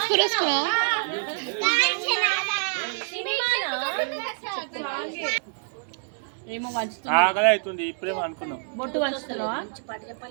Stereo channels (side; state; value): left; silent; digital silence